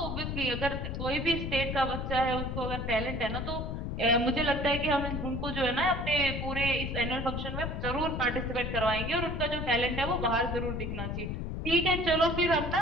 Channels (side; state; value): left; noise; rumble, 4 dB below the sound